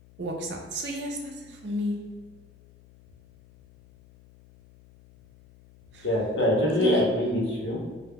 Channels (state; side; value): noise; left; hum, 25 dB below the sound